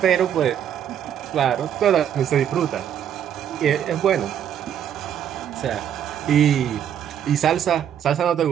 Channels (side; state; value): left; quieter; 9.4 dB